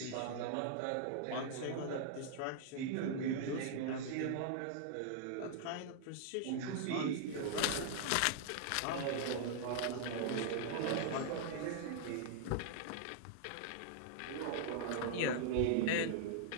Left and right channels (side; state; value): both; different; correlation -0.01